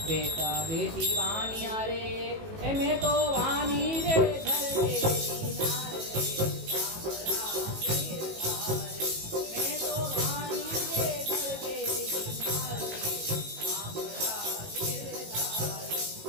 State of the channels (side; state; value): left; late; 18 ms